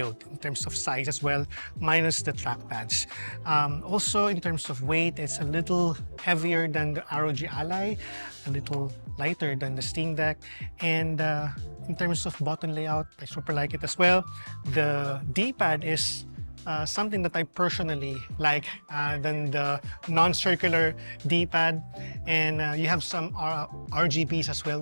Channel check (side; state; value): both; inverted; correlation -1.00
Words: in terms of size as well, minus the trackpads. Also, in terms of weight, it's a little heavier than the ROG Ally, a little lighter than the Steam Deck, and in terms of button layout, I super like it as well. The D-pad is something that I personally like than the non-circular D-pad, and you have some RGBs as well,